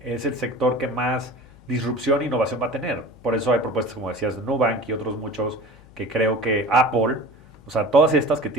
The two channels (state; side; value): noise; left; hum, 24 dB below the sound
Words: es el sector que más disrupción e innovación va a tener. Por eso hay propuestas, como decías, de Nubank y otros muchos que creo que Apple, o sea, todas estas que